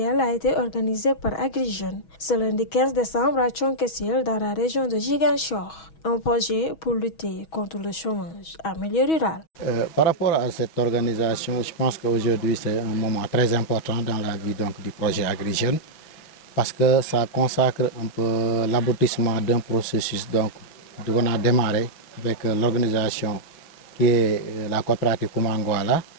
a été organisée par AgriJeunes ce lundi 15 décembre à Thionck-Essyl dans la région de Ziguinchor, un projet pour lutter contre le chômage en milieu rural. Par rapport à cette organisation, je pense qu'aujourd'hui c'est un moment très important dans la vie du projet AgriJeunes parce que ça consacre un peu l'aboutissement d'un processus qu'on a démarré avec l'organisation qui est la coopérative Koumangouala,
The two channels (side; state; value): right; late; 6.2 ms